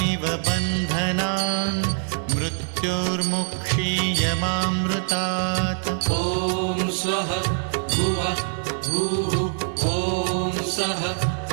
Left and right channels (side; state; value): left; silent; 63 dB below the other